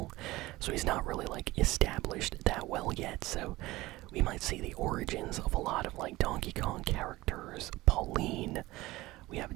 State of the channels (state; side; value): quieter; left; 19.0 dB